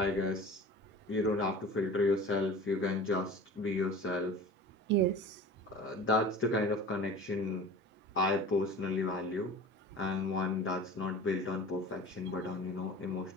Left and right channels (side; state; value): both; normal; correlation 0.39